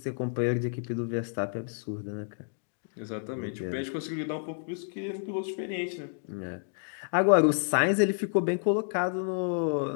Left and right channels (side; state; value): right; silent; digital silence